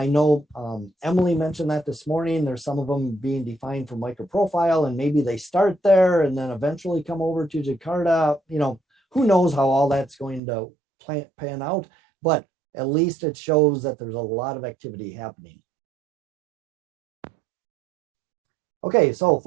know Emily mentioned that this morning. There's some of them being defined for microprofile, and maybe they start there and then eventually come over to Jakarta. Who knows how all that's going to pan out, but at least it shows that there's a lot of activity happening. Okay, so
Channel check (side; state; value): left; drops out; at 10.4 s